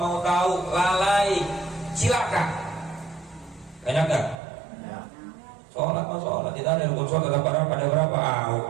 tahu. Lalai, silakan. Banyak gak? Sholat mau sholat, tidak ada rukun sholat, ada berapa?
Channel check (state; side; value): drops out; left; at 4.4 s